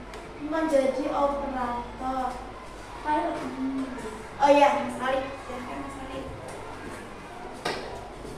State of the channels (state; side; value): identical; both; correlation 1.00